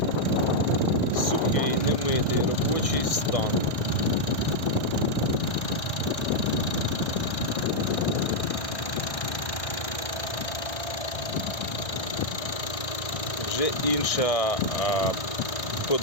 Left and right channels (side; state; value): right; late; 1.6 ms